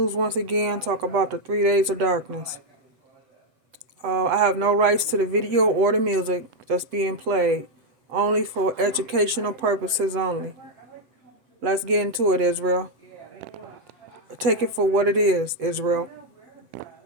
once again, talk about the 3 days of darkness. I have no rights to the video or the music that's being played, only for educational purposes only. Let's get into it, Israel. Take it for what it is, Israel.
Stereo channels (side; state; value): left; late; 7.8 ms